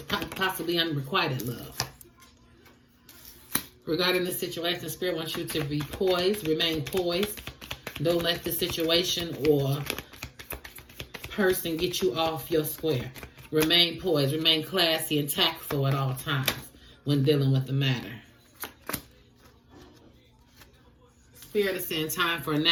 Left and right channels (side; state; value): both; identical; correlation 1.00